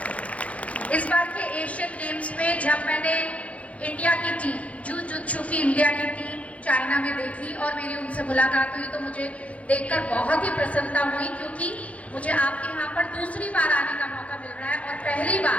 इस बार के एशियन गेम्स में जब मैंने इंडिया की टीम, जूजुत्सु की इंडिया की टीम चाइना में देखी और मेरी उनसे मुलाकात हुई तो मुझे देखकर बहुत ही प्रसन्नता हुई, क्योंकि मुझे आपके यहाँ पर दूसरी बार आने का मौका मिल रहा है। और पहली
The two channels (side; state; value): right; late; 0.065 ms